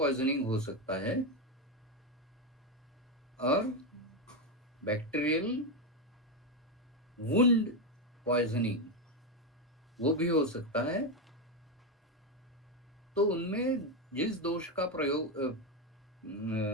हो सकता है और बैक्टीरियल वुंड पॉइजनिंग वो भी हो सकता है. तो उनमें जिस दोष का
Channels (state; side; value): normal; both; correlation 0.08